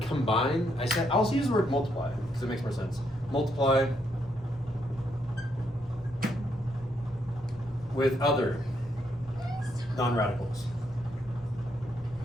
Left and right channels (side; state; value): both; normal; correlation 0.76